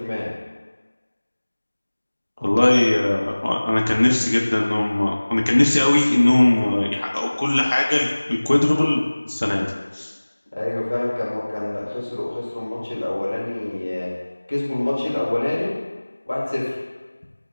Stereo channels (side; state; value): both; inverted; correlation -1.00